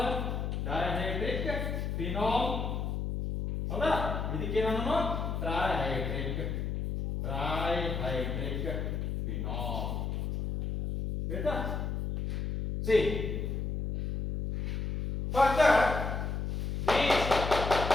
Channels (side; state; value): left; noise; hum, 2 dB below the sound